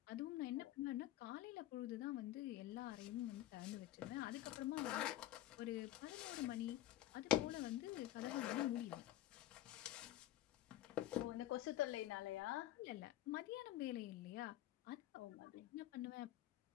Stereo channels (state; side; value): quieter; right; 13.9 dB